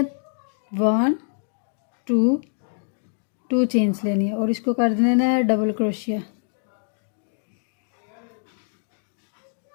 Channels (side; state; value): right; silent; digital silence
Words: 1 2 चेन्स लेनी है और इसको कर देना है डबल क्रोशिया।